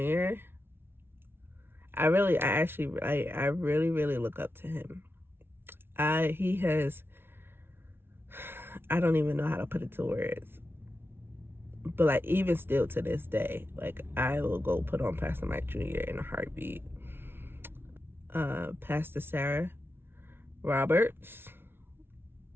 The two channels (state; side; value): late; left; 0.11 ms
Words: I really look up to him. He has, I don't even know how to put it to words, but like even still to this day, like I will go put on Pastor Mike Jr. in a heartbeat. Pastor Sarah Roberts,